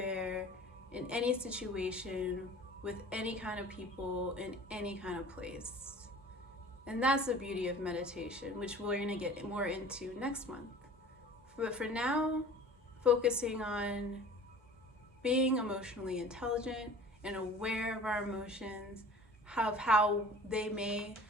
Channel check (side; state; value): both; normal; correlation 0.45